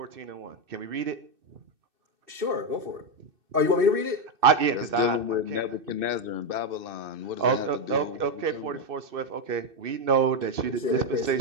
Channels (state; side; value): late; left; 2.6 ms